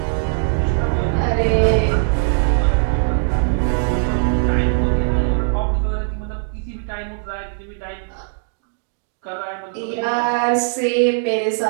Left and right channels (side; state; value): left; silent; digital silence